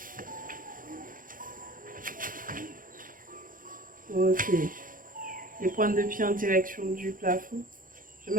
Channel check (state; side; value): late; left; 0.40 ms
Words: Ok. Les pointes de pied en direction du plafond. Je